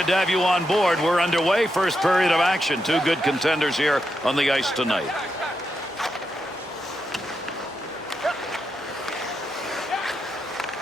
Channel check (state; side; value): normal; both; correlation 0.84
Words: to have you on board. We're underway. First period of action. Two good contenders here on the ice tonight.